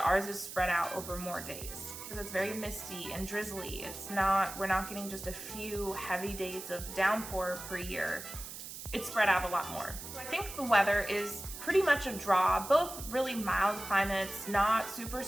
ours is spread out over more days because it's very misty and drizzly. We're not getting just a few heavy days of downpour per year. It's spread out a lot more. So I think the weather is pretty much a draw, both really mild climates, not super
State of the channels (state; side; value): noise; right; hiss, 10 dB below the sound